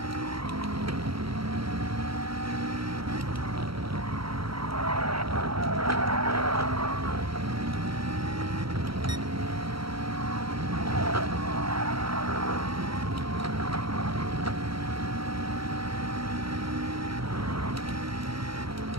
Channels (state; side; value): late; left; 0.75 ms